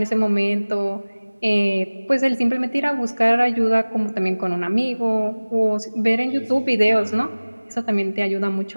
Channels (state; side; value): inverted; both; correlation -1.00